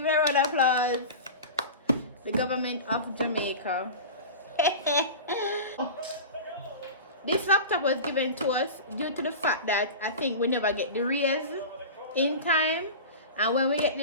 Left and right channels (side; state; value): both; inverted; correlation -0.31